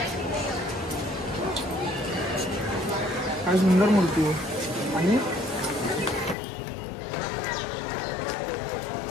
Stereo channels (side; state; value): right; drops out; at 6.4 s